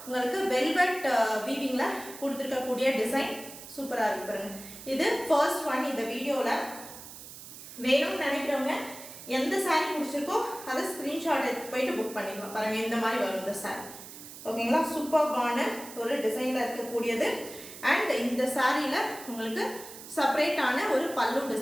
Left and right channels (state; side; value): noise; right; hiss, 14 dB below the sound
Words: உங்களுக்கு வெல்வெட் வீவிங்கில் கொடுத்துருக்கக்கூடிய டிசைன் சூப்பராக இருக்கு பாருங்க. இது ஃபர்ஸ்ட் ஒன் இந்த வீடியோவில். வேணும்னு நினைக்கிறவங்க எந்த சாரீ பிடிச்சிருக்கோ அதை ஸ்க்ரீன்ஷாட் எடுத்து போயிட்டு புக் பண்ணிக்கலாம். பாருங்கள், இந்த மாதிரி வரும் இந்த சாரீ. ஓகேங்களா, சூப்பர்பான ஒரு டிசைனில் இருக்கக்கூடியது. அண்ட் இந்த சாரியில் உங்களுக்கு செப்பரேட்டான ஒரு பல்லு